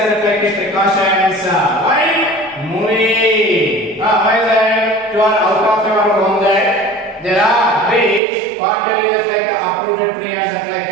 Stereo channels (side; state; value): left; drops out; at 8.2 s